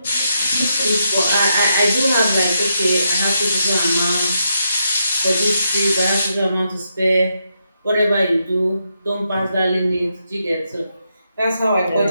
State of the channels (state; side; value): inverted; both; correlation -0.81